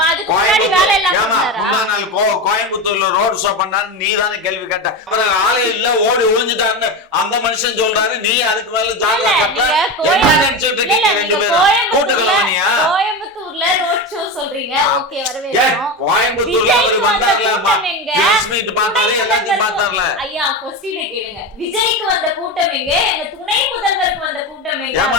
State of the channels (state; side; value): normal; both; correlation 0.20